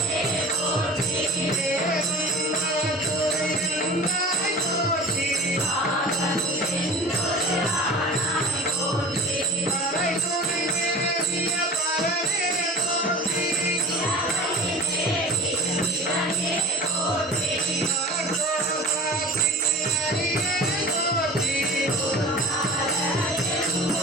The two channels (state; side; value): normal; both; correlation 0.39